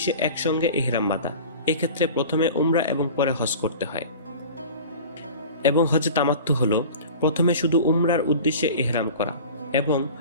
একসঙ্গে ইহরাম বাঁধা। এক্ষেত্রে প্রথমে উমরা এবং পরে হজ করতে হয়। এবং হজে তামাত্তু হলো প্রথমে শুধু উমরার উদ্দেশ্যে ইহরাম করা এবং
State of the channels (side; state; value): both; inverted; correlation -0.38